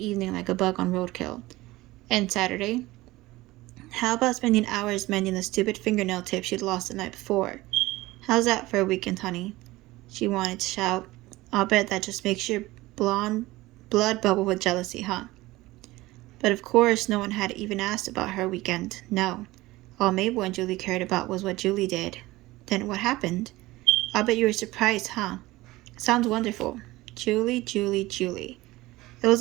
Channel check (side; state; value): left; quieter; 18.9 dB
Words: like a bug on roadkill. And Saturday? How about spending hours mending the stupid fingernail tip she'd lost the night before? How's that for a weekend, honey? She wanted to shout. I'll bet that just makes your blonde blood bubble with jealousy, huh? But of course, no one had even asked about her weekend. No. All Mabel and Julie cared about was what Julie did. Then what happened? I'll bet you were surprised, huh? Sounds wonderful. Julie, Julie, Julie. It was